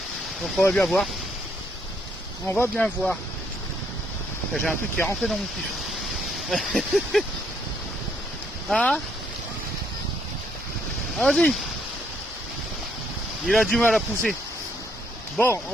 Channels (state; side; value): normal; both; correlation 0.71